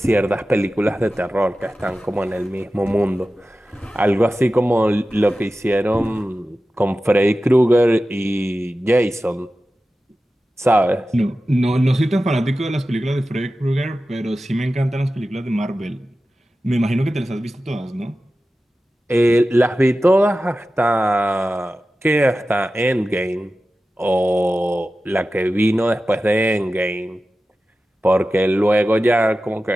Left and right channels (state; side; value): normal; both; correlation 0.94